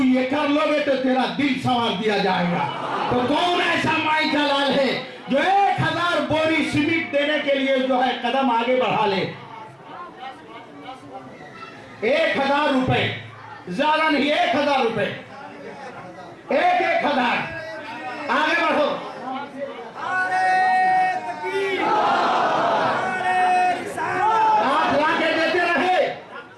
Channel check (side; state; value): both; identical; correlation 1.00